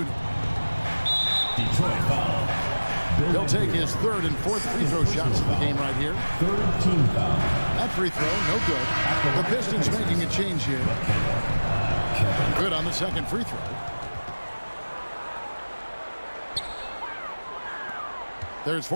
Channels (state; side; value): inverted; both; correlation -1.00